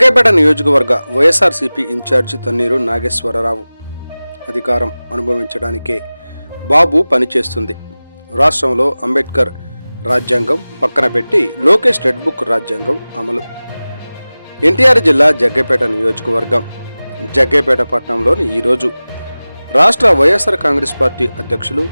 నియోజకవర్గ వైఎస్ఆర్సీపీ ఇన్ఛార్జి తన్నీరు నాగేశ్వరరావు. అధికారం అనుభవించడానికే బాబు పనిచేస్తుంది. రాష్ట్రంలో అంబేద్కర్ రాజ్యాంగం పక్కన పెట్టి లోకేష్ రెడ్ బుక్ రాజ్యాంగం అమలు. ఎన్టీఆర్ జిల్లా జగ్గయ్యపేట నియోజకవర్గం. జగ్గయ్యపేట పట్టణంలోని ఈరోజు రాష్ట్ర వైఎస్ఆర్ కాంగ్రెస్ పార్టీ అధ్యక్షులు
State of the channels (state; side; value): inverted; both; correlation -0.98